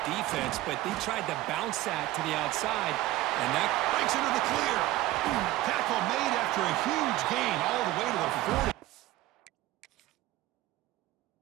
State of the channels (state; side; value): quieter; left; 16.5 dB